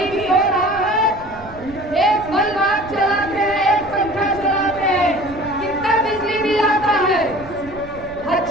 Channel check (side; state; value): right; noise; rumble, 17 dB below the sound